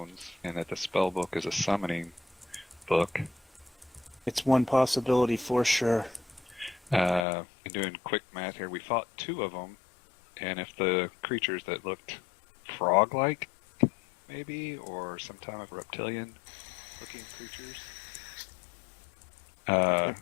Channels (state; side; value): drops out; right; at 7.2 s